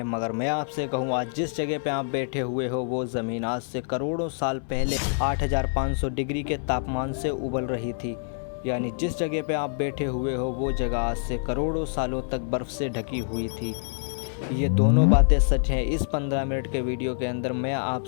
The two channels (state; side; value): silent; right; digital silence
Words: मगर मैं आपसे कहूँ आज जिस जगह पे आप बैठे हुए हो वो ज़मीन आज से करोड़ों साल पहले 8500 डिग्री के तापमान से उबल रही थी। यानी जिस जगह पे आप बैठे हुए हो वो जगह आज से करोड़ों सालों तक बर्फ़ से ढकी हुई थी। ये दोनों बातें सच हैं। इस 15 मिनट के वीडियो के अंदर मैं